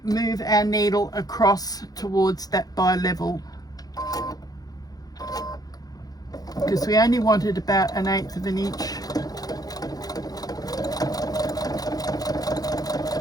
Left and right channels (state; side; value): late; right; 0.18 ms